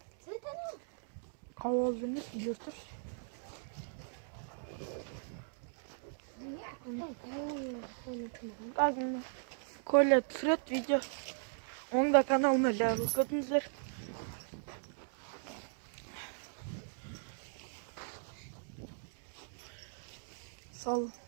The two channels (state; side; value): silent; left; digital silence